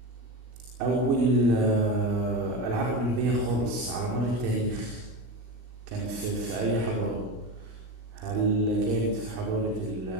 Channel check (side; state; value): left; late; 16 ms